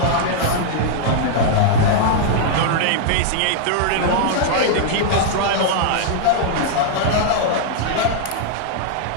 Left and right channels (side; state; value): both; different; correlation -0.01